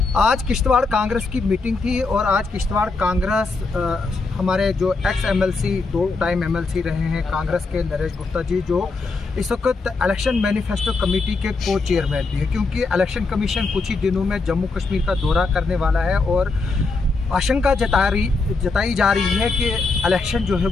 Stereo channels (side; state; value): right; quieter; 3.9 dB